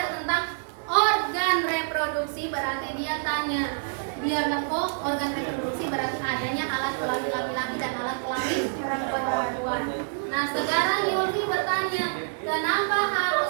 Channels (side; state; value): left; silent; digital silence